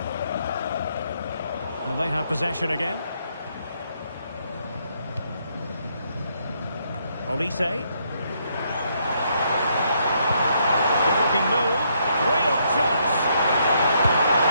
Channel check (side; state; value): both; inverted; correlation -0.73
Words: And they have possession again. Olise. Good-looking move. Real chance.